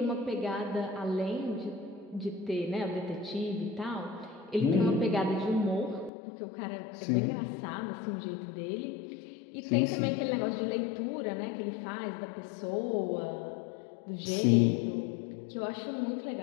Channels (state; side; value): drops out; right; at 6.1 s